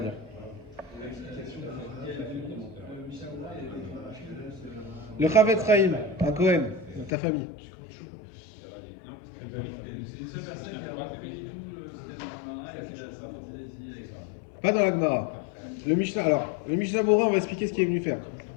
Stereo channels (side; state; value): right; drops out; at 7.1 s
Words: Le Chavetz Chaim, un Cohen, de ta famille. Pas dans la Gemara. Le Mishnah Berurah, on va expliquer ce qu'il est venu faire.